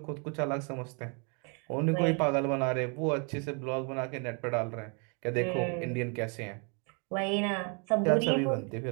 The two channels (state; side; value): quieter; left; 36.3 dB